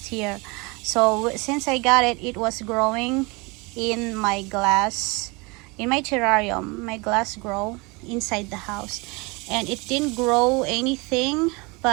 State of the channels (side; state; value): left; quieter; 27.2 dB